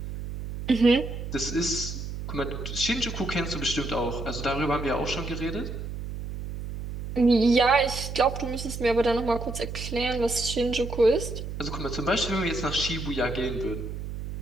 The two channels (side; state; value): right; noise; hum, 7 dB below the sound